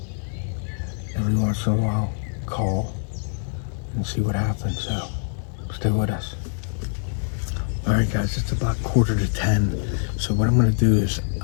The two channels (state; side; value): silent; right; digital silence